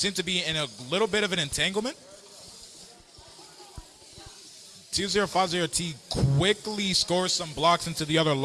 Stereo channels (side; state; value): both; identical; correlation 1.00